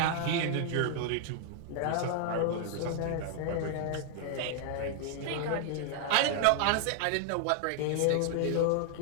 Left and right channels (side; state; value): both; different; correlation 0.00